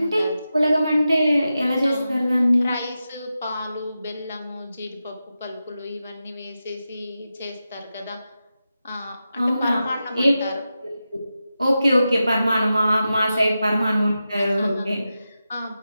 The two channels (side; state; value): both; inverted; correlation -0.91